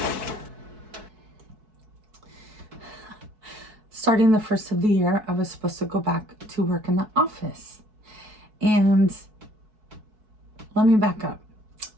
Starting the first of the year, I was supposed to go back to work in the office. And let me back up.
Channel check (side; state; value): left; late; 4.6 ms